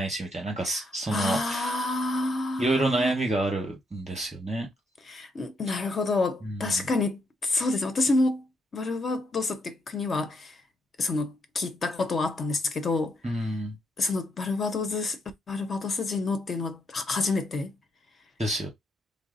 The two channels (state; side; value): normal; both; correlation 0.77